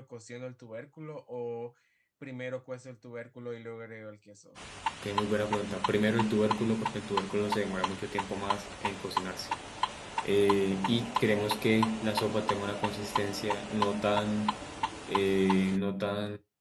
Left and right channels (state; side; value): identical; both; correlation 1.00